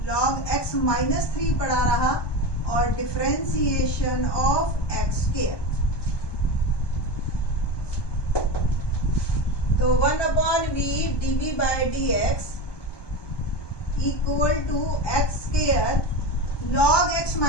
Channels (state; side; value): late; right; 1.2 ms